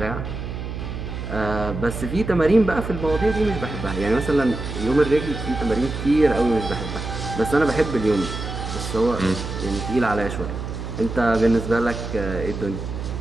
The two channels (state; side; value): noise; right; hum, 7 dB below the sound